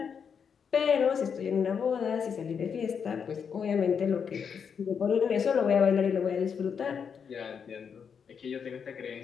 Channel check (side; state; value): right; quieter; 6.8 dB